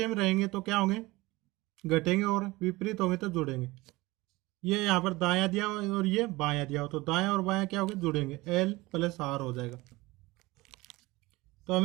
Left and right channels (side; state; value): left; quieter; 21.1 dB